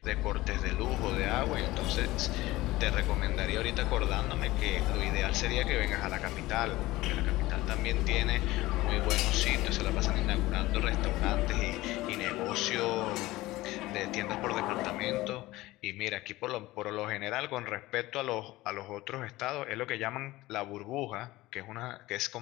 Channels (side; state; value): right; quieter; 18.4 dB